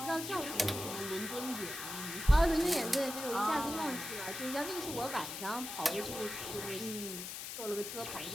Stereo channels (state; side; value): noise; left; hiss, 7 dB below the sound